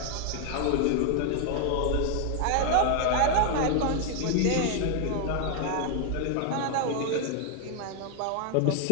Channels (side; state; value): both; different; correlation 0.00